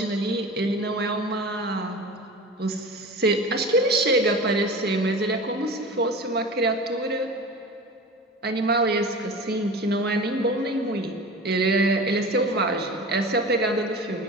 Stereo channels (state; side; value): normal; both; correlation 0.34